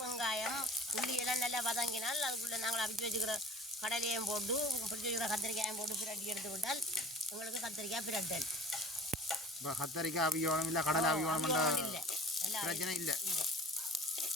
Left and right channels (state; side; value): normal; both; correlation 0.43